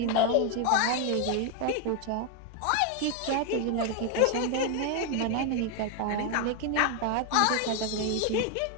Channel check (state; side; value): different; both; correlation 0.01